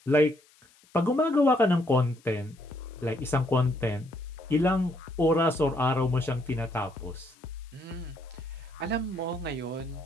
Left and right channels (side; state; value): left; noise; hiss, 30 dB below the sound